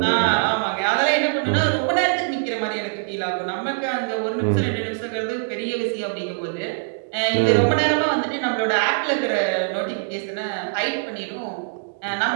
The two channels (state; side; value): silent; left; digital silence